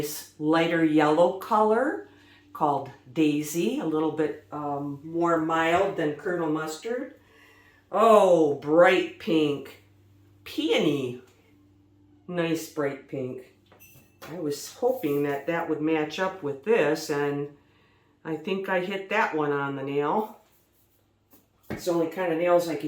lighter yellow color called Daisy, a little bit more mild than Colonel Mustard. Oh, bright pink. Peony. Nice bright pink. I was hoping that that would match up with this, and I think I hit that one on the nail. It's the only kind of nails I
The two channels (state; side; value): identical; both; correlation 1.00